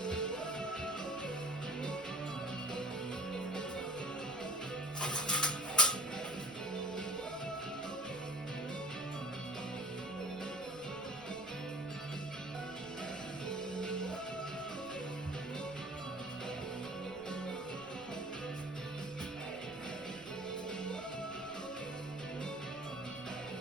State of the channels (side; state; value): left; noise; rumble, 22 dB below the sound